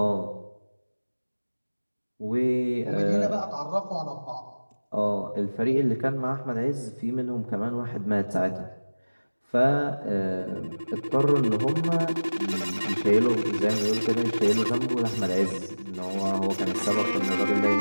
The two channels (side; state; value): both; inverted; correlation -1.00